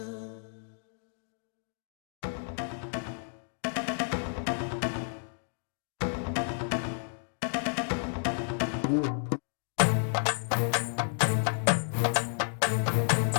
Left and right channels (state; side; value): silent; right; digital silence